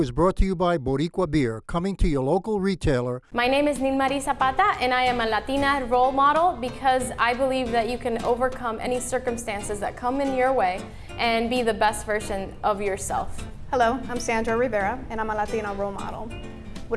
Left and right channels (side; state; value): both; identical; correlation 1.00